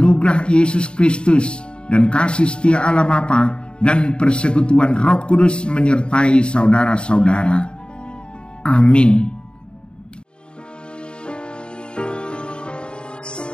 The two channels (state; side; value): late; right; 0.052 ms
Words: Yesus Kristus dan kasih setia Allah Bapa dan persekutuan Roh Kudus menyertai saudara-saudara. Amin.